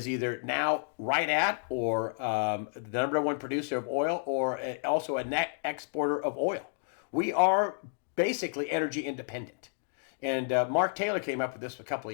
now right at or the number 1 producer of oil, or also a net exporter of oil. We are basically energy independent. And Mark Taylor came up with this a couple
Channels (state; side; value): silent; right; digital silence